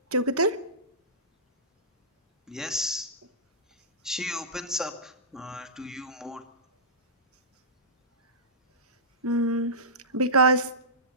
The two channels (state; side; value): normal; both; correlation -0.18